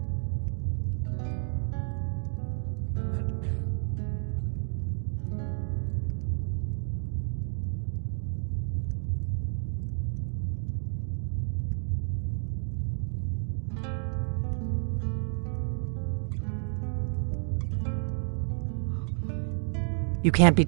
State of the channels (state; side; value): silent; left; 57 dB below the other